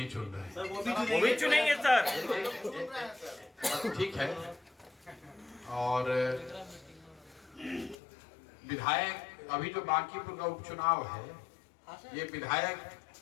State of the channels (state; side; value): drops out; right; at 8.0 s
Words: चुन रहे हैं। वो भी चुनेंगे सर। ठीक है। और विधायक, अभी जो बांकीपुर का उपचुनाव है, ये विधायक